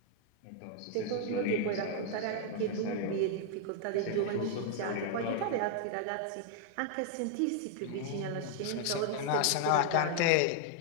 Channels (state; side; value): different; both; correlation 0.00